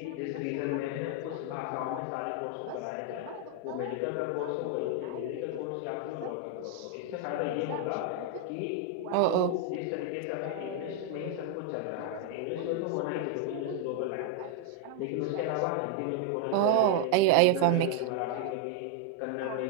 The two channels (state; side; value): different; both; correlation 0.00